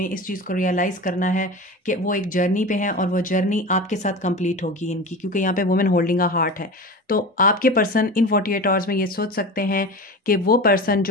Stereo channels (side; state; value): both; normal; correlation 0.30